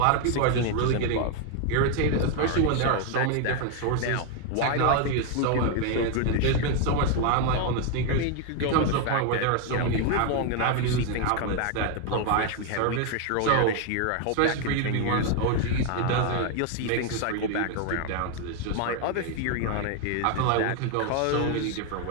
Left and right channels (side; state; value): both; different; correlation 0.01